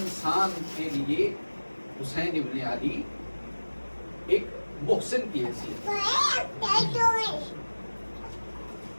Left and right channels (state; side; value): inverted; both; correlation -1.00